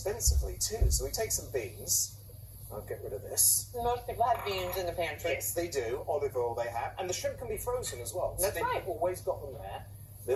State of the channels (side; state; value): both; identical; correlation 1.00